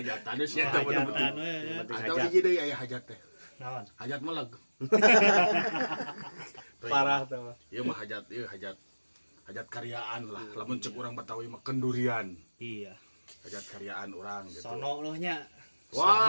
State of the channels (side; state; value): both; inverted; correlation -1.00